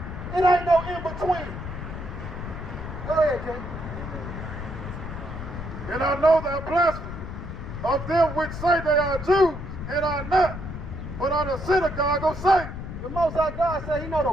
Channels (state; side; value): noise; left; rumble, 8 dB below the sound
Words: It ain't no in between. Go ahead, King. And I know thy blasphemy of them which say they are Jews and are not, but are the synagogue of Satan. The Most High God said he know